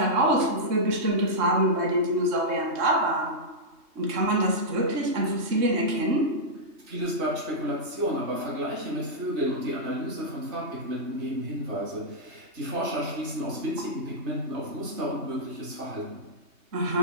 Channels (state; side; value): late; left; 3.2 ms